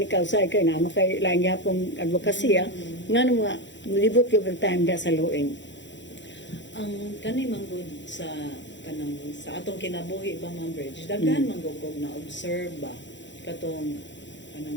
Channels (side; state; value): right; late; 0.53 ms